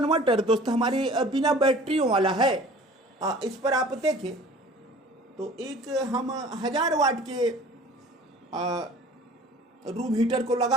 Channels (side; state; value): both; normal; correlation 0.46